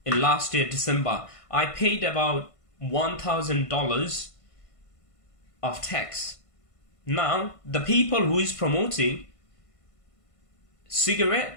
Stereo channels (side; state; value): right; late; 1.5 ms